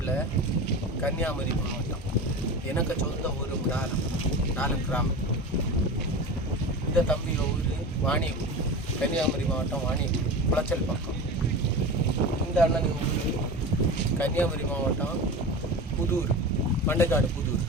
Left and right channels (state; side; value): normal; both; correlation 0.29